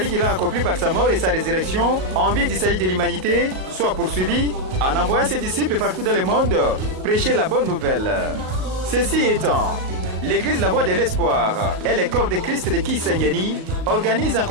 qu'il a accompli par sa mort et sa résurrection en vue du salut de l'humanité soit poursuivie en envoyant ses disciples partout dans le monde prêcher la bonne nouvelle. Ceci étant, l'Église La Voix de l'Espoir et le corps de Christ de Kisangani organisent en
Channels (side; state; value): left; late; 37 ms